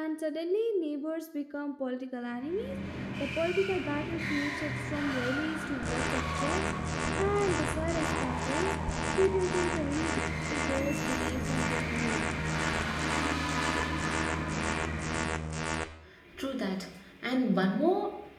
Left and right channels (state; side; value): identical; both; correlation 1.00